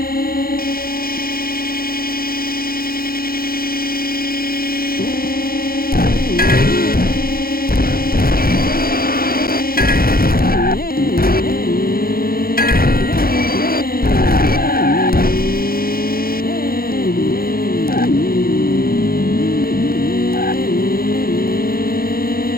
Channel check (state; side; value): late; right; 0.43 ms